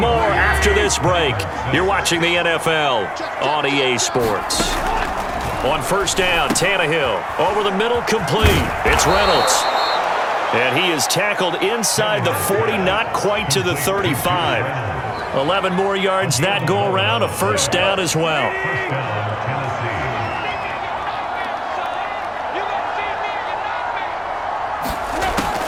after this break. You're watching the NFL on EA Sports. On first down, Tannehill. Over the middle, complete. It's Reynolds. And he is tackled inside the 40, not quite to the 35. 11 more yards that go around, a first down as well.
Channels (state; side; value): identical; both; correlation 1.00